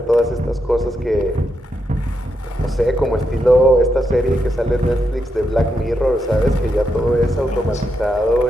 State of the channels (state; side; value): normal; both; correlation 0.83